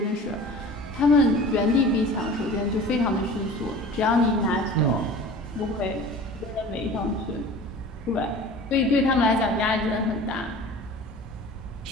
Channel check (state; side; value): normal; both; correlation 0.41